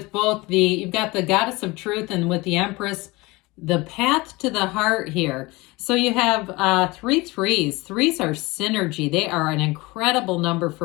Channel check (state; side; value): quieter; right; 22.8 dB